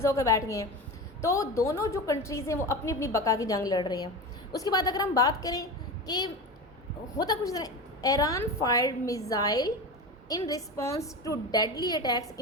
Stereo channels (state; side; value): normal; both; correlation 0.26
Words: होकर बैठ गए हैं। तो दोनों जो कंट्रीज़ हैं वो अपनी अपनी बका की जंग लड़ रही हैं। उसके बाद अगर हम बात करें कि होता कुछ तरह, Iran fired missile in response to deadly attacks